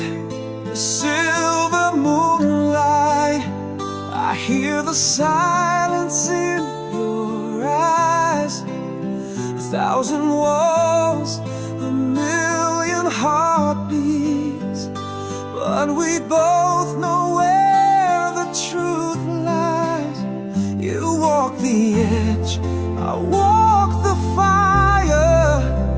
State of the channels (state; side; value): identical; both; correlation 1.00